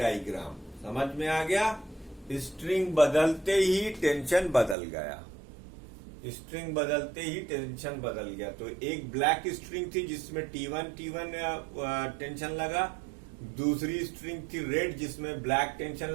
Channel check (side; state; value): left; drops out; at 4.8 s